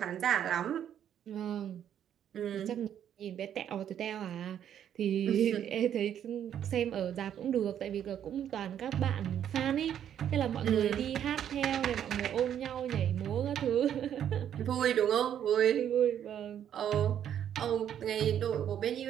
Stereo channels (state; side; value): quieter; left; 9.8 dB